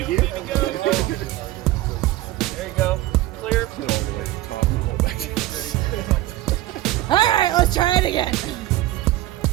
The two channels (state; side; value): quieter; left; 16.0 dB